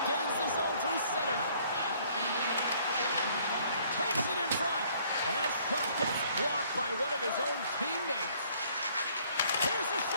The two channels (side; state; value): both; inverted; correlation -0.61